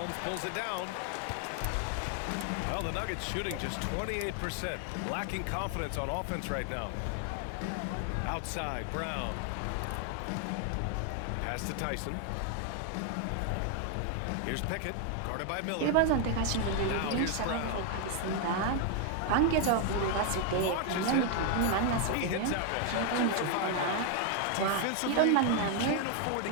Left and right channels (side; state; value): both; different; correlation 0.01